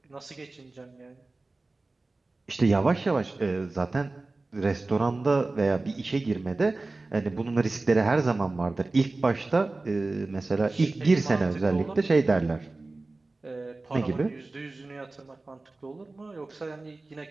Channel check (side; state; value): left; quieter; 3.3 dB